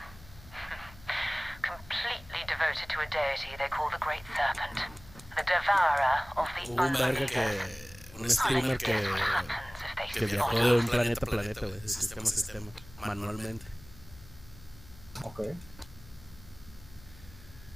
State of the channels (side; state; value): left; noise; hum, 20 dB below the sound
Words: Completely devoted to a deity they call the Great Serpent. The devourer of the un streamer que viajó de un planeta a planeta, güey, de sistema a sistema, manualmente. Ok.